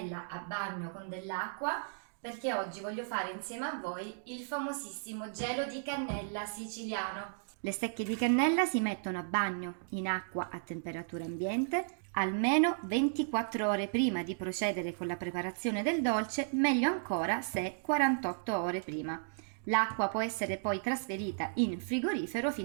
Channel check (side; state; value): left; silent; digital silence